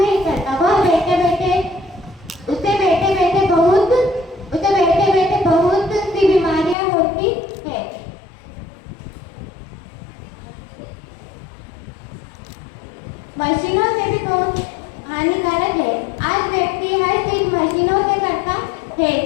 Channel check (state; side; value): drops out; right; at 6.8 s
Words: करता, वह बैठे बैठे बहुत सी बीमारियां होती है। मशीनों से भी बहुत हानिकारक है। आज व्यक्ति हर चीज मशीनों से करता है,